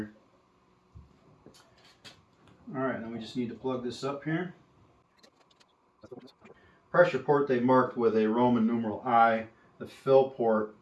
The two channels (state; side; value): identical; both; correlation 1.00